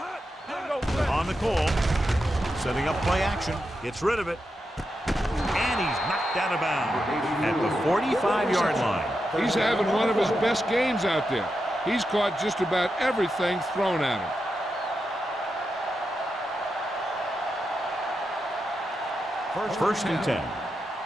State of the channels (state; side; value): normal; both; correlation 0.87